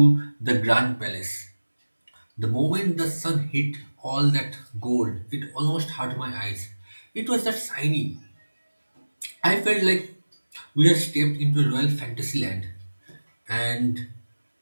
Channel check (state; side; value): inverted; both; correlation -1.00